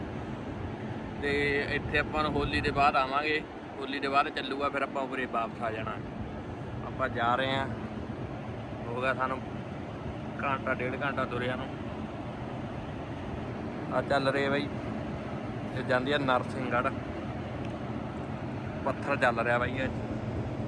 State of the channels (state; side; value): identical; both; correlation 1.00